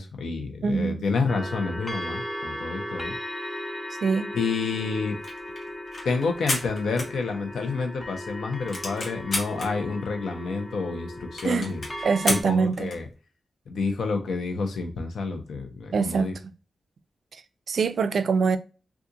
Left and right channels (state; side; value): normal; both; correlation 0.81